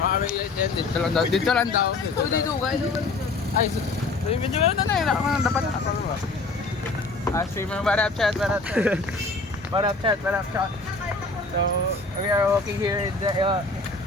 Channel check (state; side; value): quieter; right; 3.5 dB